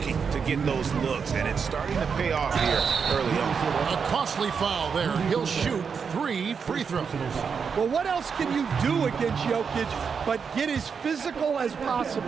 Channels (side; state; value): left; quieter; 6.1 dB